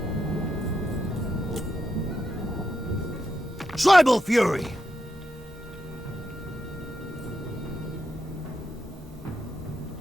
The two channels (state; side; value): normal; both; correlation 0.84